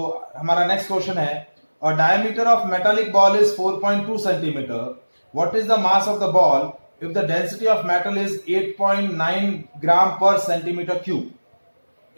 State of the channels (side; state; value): both; inverted; correlation -1.00